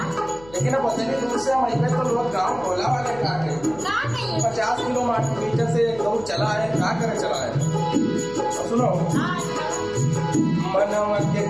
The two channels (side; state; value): left; noise; hum, 20 dB below the sound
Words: लेकिन अब उतनी दूर से हम अइबे तो लोग गाँव टोला वाले का के 50 किलोमीटर से एक दौड़ चला है, का करे चला है। और सुनो, मनवा के